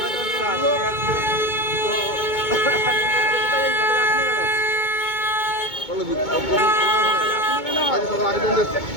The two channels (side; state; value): right; late; 2.2 ms